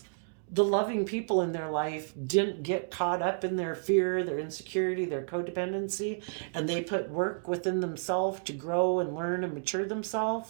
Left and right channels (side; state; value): left; silent; digital silence